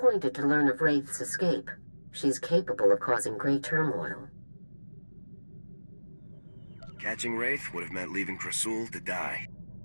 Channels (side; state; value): both; inverted; correlation -1.00